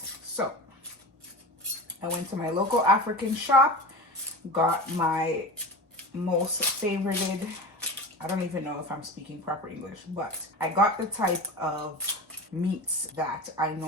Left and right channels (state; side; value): normal; both; correlation 0.30